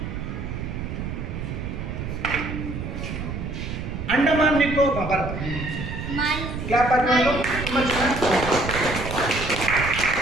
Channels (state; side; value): noise; right; rumble, 6 dB below the sound